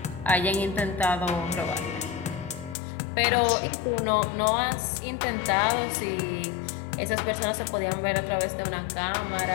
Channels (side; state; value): right; drops out; at 2.8 s